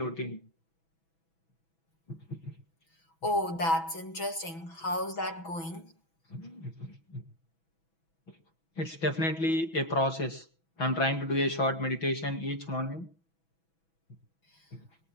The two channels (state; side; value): late; right; 6.1 ms